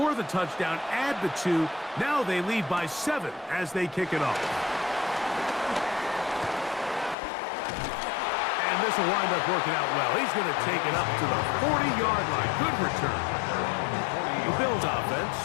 the touchdown, add the 2. Now they lead by 7 as they kick it off. And this will wind up working out well. He's going to take it up to the 40-yard line. Good return. The Bills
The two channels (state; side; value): drops out; right; at 7.2 s